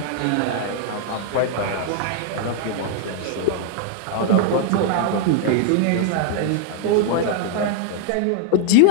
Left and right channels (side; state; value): both; different; correlation 0.00